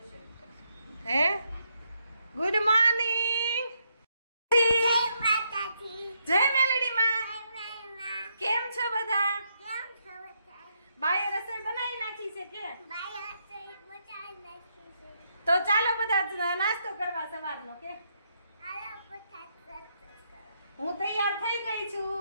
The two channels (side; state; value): both; inverted; correlation -0.78